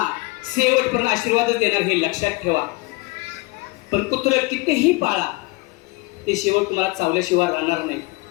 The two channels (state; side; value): quieter; right; 24.0 dB